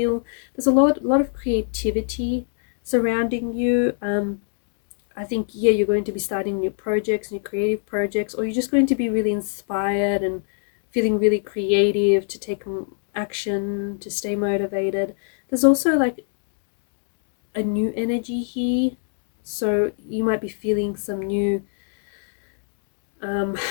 There's a lot of creativity surrounding you. I think, yeah, you're going to be starting new projects, new creative projects, or you're just going to be really inspired and feeling really creative to take action, to stay motivated. There's also like a new energy here, so you might be feeling some new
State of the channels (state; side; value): silent; right; digital silence